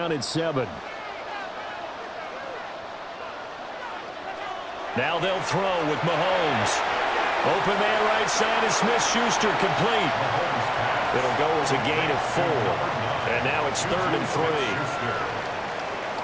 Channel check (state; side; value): identical; both; correlation 1.00